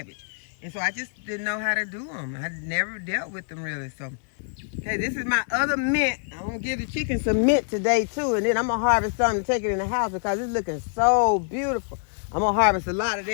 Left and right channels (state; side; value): silent; right; digital silence